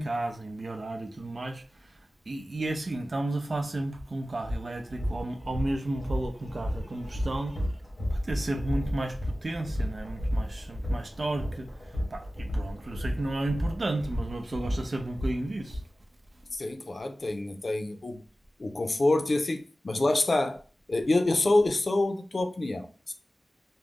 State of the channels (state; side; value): normal; both; correlation 0.96